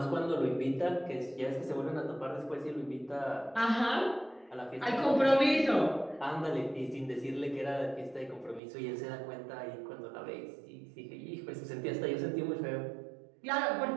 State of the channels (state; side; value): drops out; left; at 8.6 s